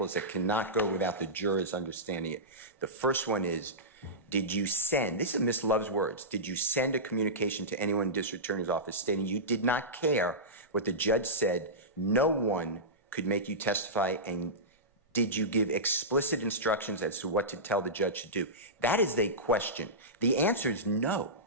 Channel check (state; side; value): normal; both; correlation -0.16